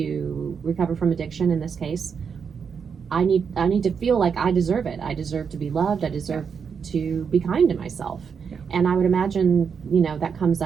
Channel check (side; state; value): left; quieter; 6.4 dB